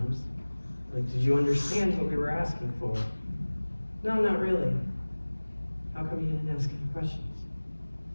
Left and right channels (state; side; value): inverted; both; correlation -1.00